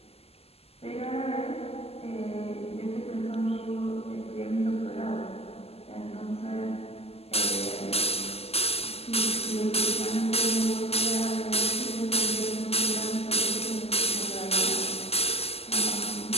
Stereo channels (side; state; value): right; late; 0.29 ms